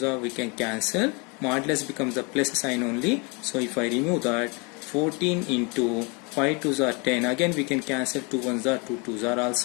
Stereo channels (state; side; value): quieter; right; 30.7 dB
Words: are, we can cancel. Modulus becomes the plus sign only. So if I remove that, 14 into 5 twos are 10. Again we can cancel, 2 ones are, 2 twos are